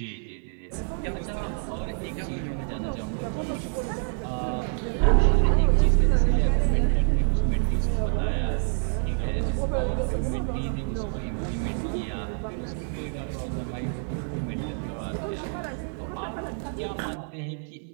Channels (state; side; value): silent; left; 58 dB below the other